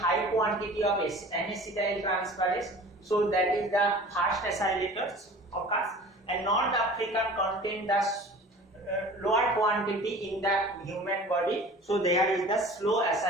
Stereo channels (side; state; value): both; normal; correlation 0.42